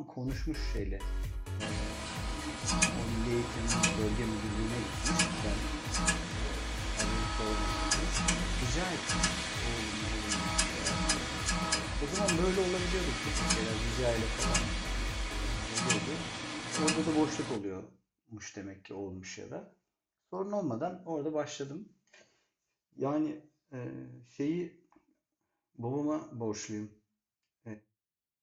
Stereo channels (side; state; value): both; identical; correlation 1.00